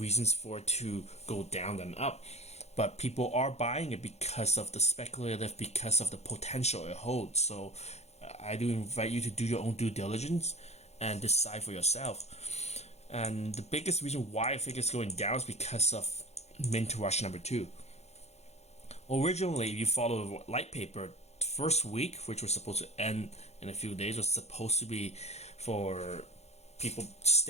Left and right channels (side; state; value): right; late; 0.31 ms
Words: for it to go down than up, but people are buying it because of the speculative, because of the potential it holds. So I do invite you to do your own due diligence and decide for yourself. And the biggest reason why I think it's going down is because of mint rush number 2. Originally, if you follow the light paper, first week, which was supposed to end in a few days, was supposed to be for people